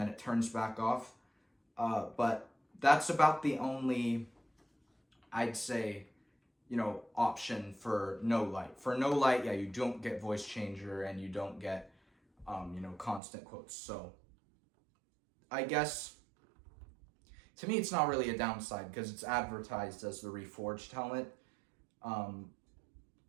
it turns back off. But that's about the only, I'd say, option for no light. For no light, you don't get voice changer and you don't get, constant quotes. So I guess, to me, it's not really a downside because it's advertised as the reforged helmet.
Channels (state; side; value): drops out; left; at 13.2 s